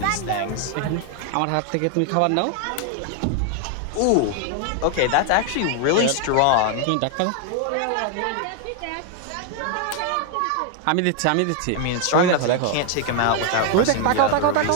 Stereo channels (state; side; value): different; both; correlation 0.01